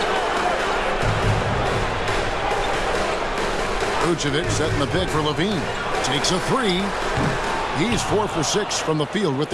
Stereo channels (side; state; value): both; identical; correlation 1.00